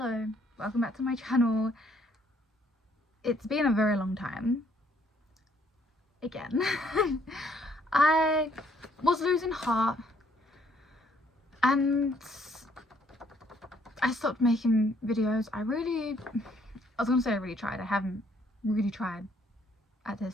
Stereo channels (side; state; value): both; normal; correlation 0.66